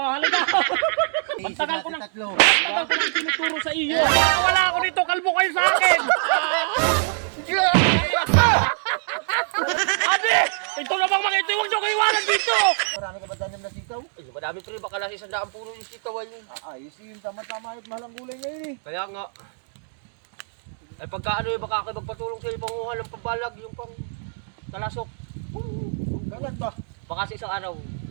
halika. Magtagal ko nang tinuturo sa iyo. Wala ako dito, kalbo kayo sa akin. Ate! Ito na bang mga ito, huwag niyo kayo iwanan dito. Marami ka ba tanim na sitaw? Ay, madami pre, baka nasa 100 puno yung sitaw ay. Ayos yun, tama-tama at mahal ang gulay ngayon eh. Kaya nga. Ay pagka ano yung baka kayo magpatulong sa panguha ng pambalag, yung pang talasok. Kailan ba? Baka sa isang araw.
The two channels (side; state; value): left; silent; digital silence